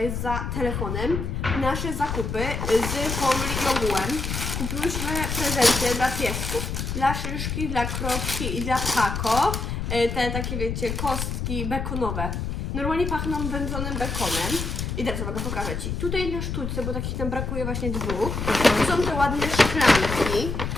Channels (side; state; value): left; noise; rumble, 3 dB below the sound